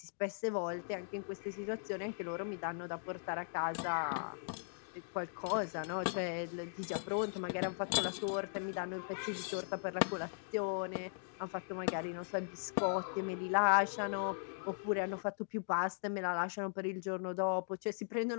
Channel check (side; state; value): right; silent; digital silence